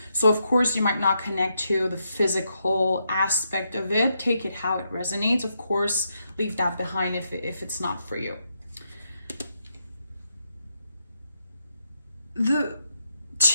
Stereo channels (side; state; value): both; inverted; correlation -0.81